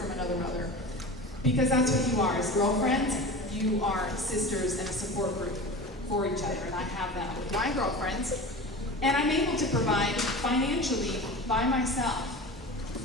another mother, because that's what you are. As girlfriends, you are sisters and a support group for each other, and I have that with my girlfriends. And I'm able to provide financially by myself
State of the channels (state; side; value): normal; both; correlation 0.32